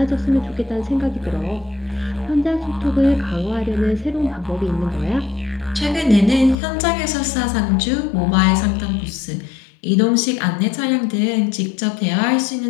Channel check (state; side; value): drops out; right; at 6.6 s